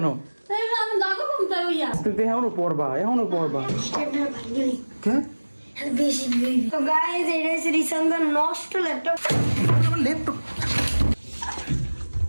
তুই এখনো পড়বা কে? তো গাইস এটা হচ্ছে রিসান্দার নষ্ট ল্যাপটপ। আমার ল্যাপটপ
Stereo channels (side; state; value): both; inverted; correlation -1.00